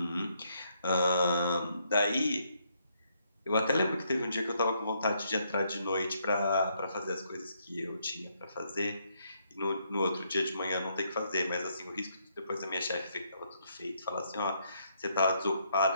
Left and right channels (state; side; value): inverted; both; correlation -0.73